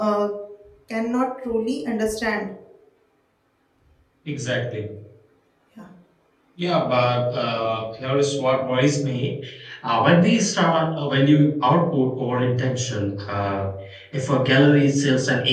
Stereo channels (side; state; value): both; identical; correlation 1.00